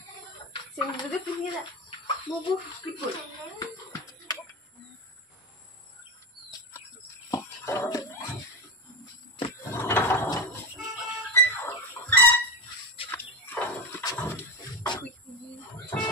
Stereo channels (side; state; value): both; normal; correlation 0.19